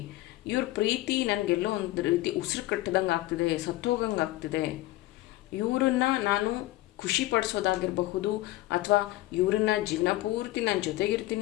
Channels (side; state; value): right; quieter; 17.1 dB